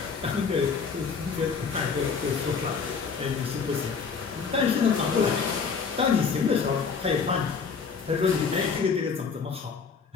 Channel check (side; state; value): right; quieter; 5.6 dB